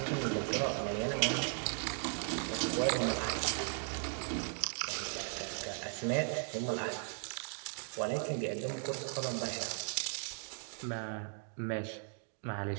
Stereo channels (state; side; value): silent; left; 53 dB below the other